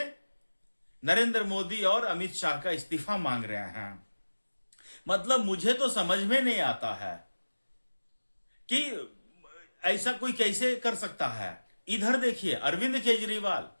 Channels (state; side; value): inverted; both; correlation -1.00